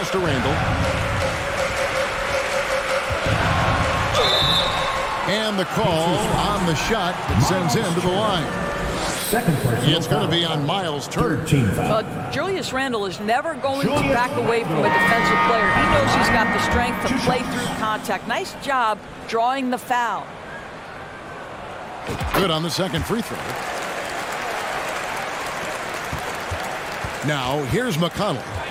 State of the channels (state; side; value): identical; both; correlation 1.00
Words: to Randall. And the call on the shot that sends him to the line. It's going to be on Miles Turner. Julius Randle is never going to back away from a defensive player. He knows he's got the strength to play through contact. Nice job drawing the foul. Good on the second free throw. Now, here's McConnell.